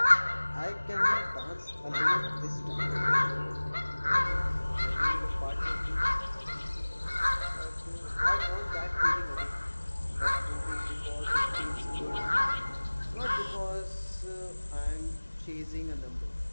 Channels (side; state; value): both; inverted; correlation -1.00